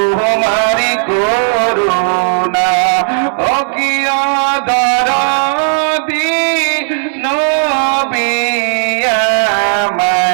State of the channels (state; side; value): silent; left; digital silence